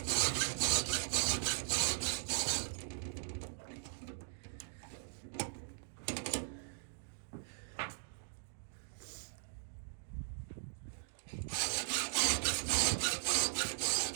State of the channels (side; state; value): left; silent; digital silence